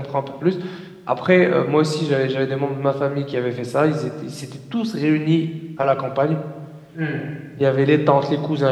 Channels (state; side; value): identical; both; correlation 1.00